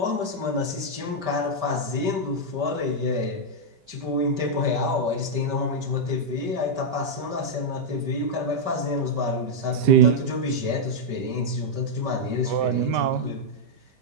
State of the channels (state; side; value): late; left; 5.2 ms